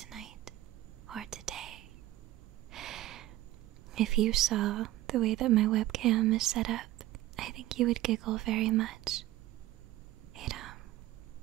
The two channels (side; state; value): left; quieter; 15.5 dB